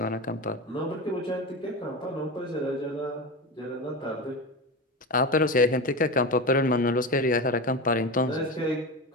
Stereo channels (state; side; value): normal; both; correlation 0.23